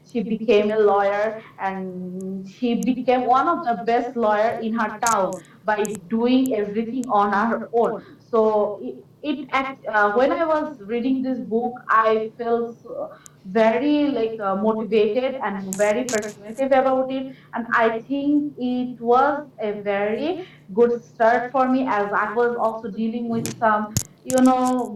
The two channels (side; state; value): both; identical; correlation 1.00